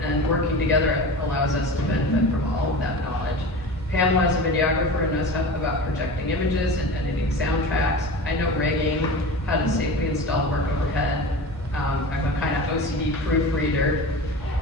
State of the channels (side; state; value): both; normal; correlation 0.32